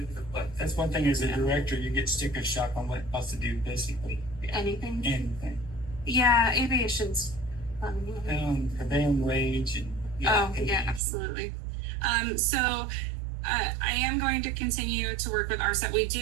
one thing as a director, you get sticker shock on what else to do basically. Anything. Anything. Yeah, aviation's fun. Prevailing wage and Absolutely. So I am going to continue to work with RSET. We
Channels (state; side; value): drops out; left; at 11.0 s